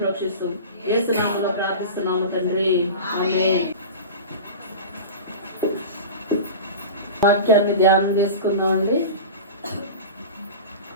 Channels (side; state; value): both; inverted; correlation -0.31